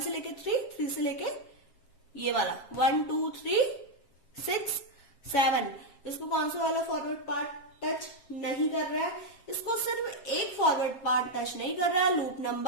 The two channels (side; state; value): right; late; 7.6 ms